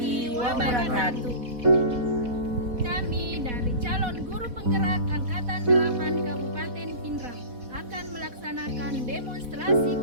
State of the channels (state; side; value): late; left; 4.1 ms